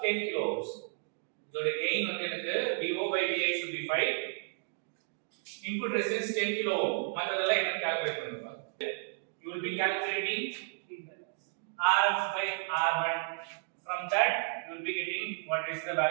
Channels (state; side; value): silent; left; digital silence